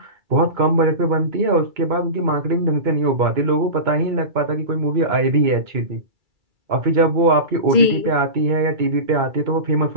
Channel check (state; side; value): late; left; 2.3 ms